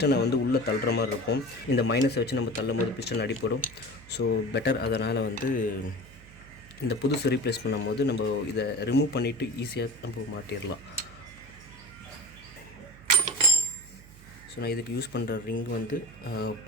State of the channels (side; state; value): right; noise; hum, 21 dB below the sound